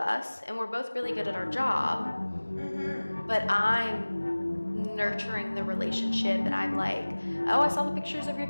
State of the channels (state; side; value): inverted; both; correlation -1.00